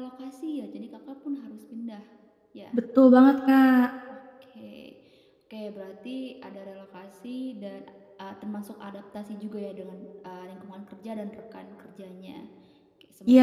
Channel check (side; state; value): both; identical; correlation 1.00